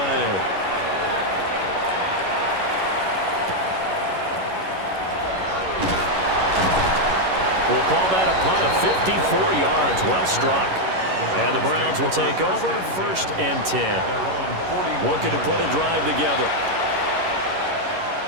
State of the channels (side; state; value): left; late; 11 ms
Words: We'll call that a punt of 54 yards. Well struck. And the Browns will take over 1st and 10. Looking to put a drive together.